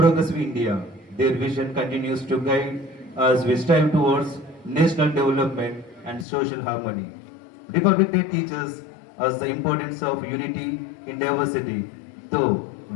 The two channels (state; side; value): drops out; right; at 6.2 s